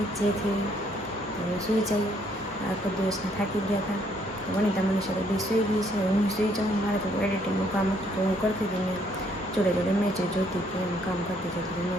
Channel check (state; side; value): normal; both; correlation 0.68